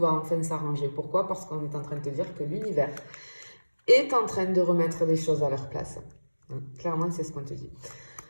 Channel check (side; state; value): both; inverted; correlation -1.00